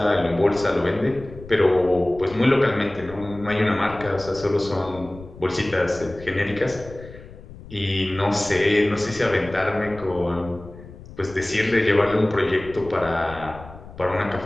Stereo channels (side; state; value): left; noise; rumble, 17 dB below the sound